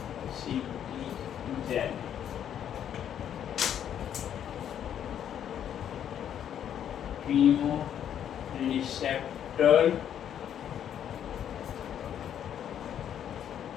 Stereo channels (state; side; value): quieter; right; 9.6 dB